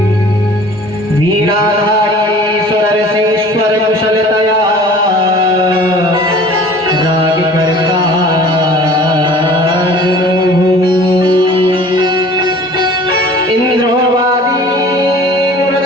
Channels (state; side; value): normal; both; correlation 0.46